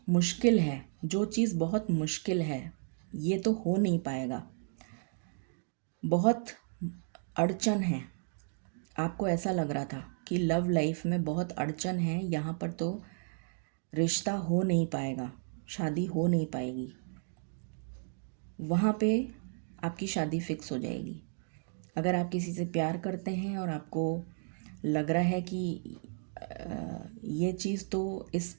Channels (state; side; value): silent; left; 55 dB below the other